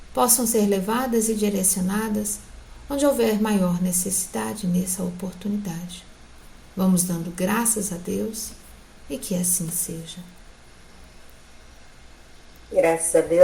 possam ser levadas e direcionadas onde houver maior necessidade nessa oportunidade. Vamos dando graças a Deus e que assim seja. Graças a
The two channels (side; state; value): both; identical; correlation 1.00